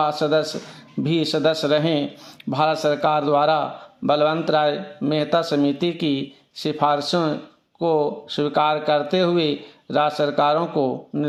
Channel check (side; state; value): both; identical; correlation 1.00